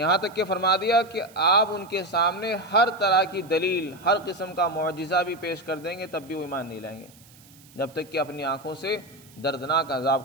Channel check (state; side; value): noise; right; hiss, 25 dB below the sound